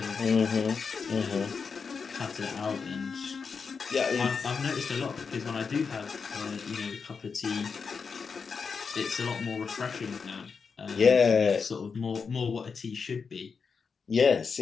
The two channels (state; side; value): quieter; right; 5.5 dB